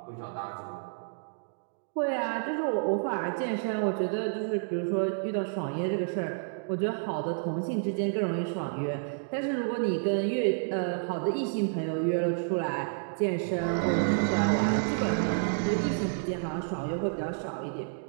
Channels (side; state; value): left; silent; digital silence